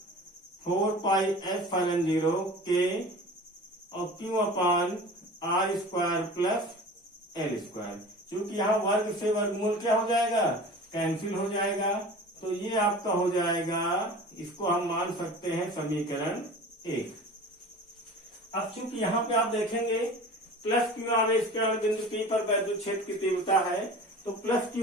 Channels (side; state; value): both; normal; correlation 0.38